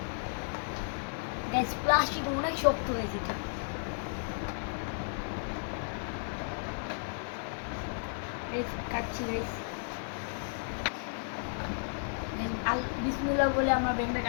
গাইস প্লাস্টিক অনেক শক্ত হয়েছে এটা গাইস, কাটছি গাইস। বিসমিল্লাহ বলে আমরা ব্যাংকটা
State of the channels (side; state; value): right; silent; digital silence